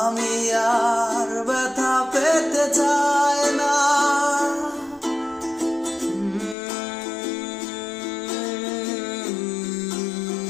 আমি আর ব্যথা পেতে চাই না।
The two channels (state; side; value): drops out; right; at 6.6 s